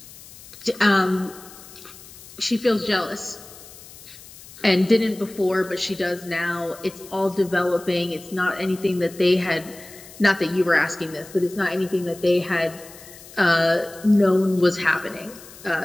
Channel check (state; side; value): noise; left; hiss, 19 dB below the sound